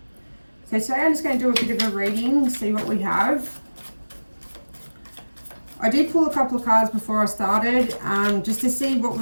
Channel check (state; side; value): inverted; both; correlation -1.00